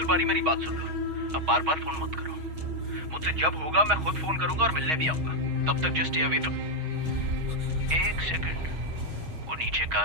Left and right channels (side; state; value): left; late; 6.3 ms